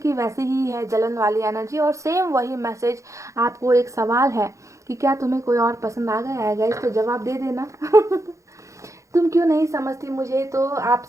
वैसे ही है, जलन वाली एनर्जी। और सेम वही मैसेज आपको एक सवाल है कि क्या तुम्हें कोई और पसंद आ गया है गाइस, तो जवाब दे देना। तुम क्यों नहीं समझती मुझे, तो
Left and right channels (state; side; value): late; left; 0.15 ms